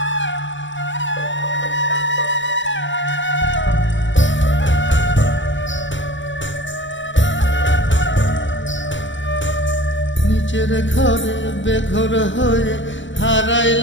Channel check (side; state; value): right; late; 0.55 ms